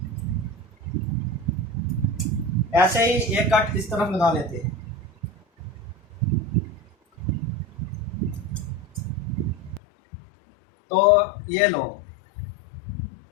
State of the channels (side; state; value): right; drops out; at 9.8 s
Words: ऐसे ही एक कट इस तरफ लगा लेते हैं। तो ये लो,